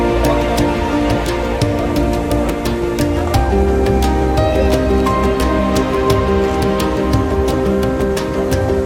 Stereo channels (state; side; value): identical; both; correlation 1.00